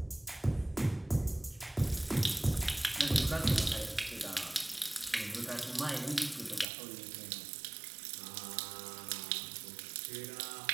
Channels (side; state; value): left; drops out; at 6.7 s